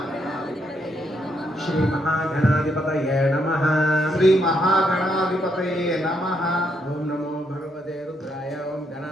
श्री महागणाधिपतये नमः श्री महागणाधिपतये नमः। ओम नमो भगवते रुद्राय। ओम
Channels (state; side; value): normal; both; correlation 0.76